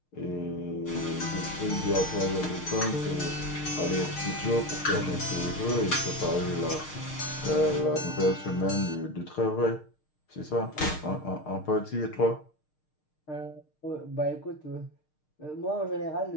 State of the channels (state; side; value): late; right; 6.5 ms